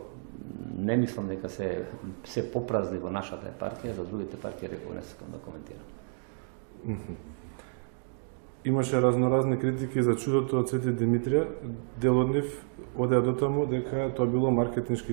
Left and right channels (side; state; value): left; silent; digital silence